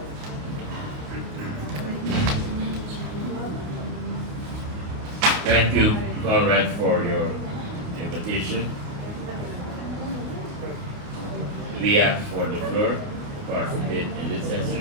Thank you, Conrad, for your invitation. We asked for the floor to participate in this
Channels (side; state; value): left; late; 28 ms